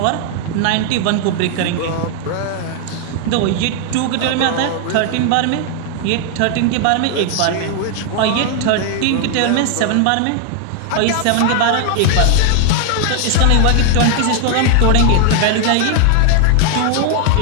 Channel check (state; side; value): different; both; correlation 0.00